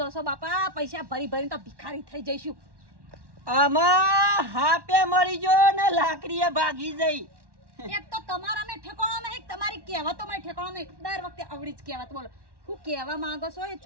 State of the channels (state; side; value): late; left; 1.1 ms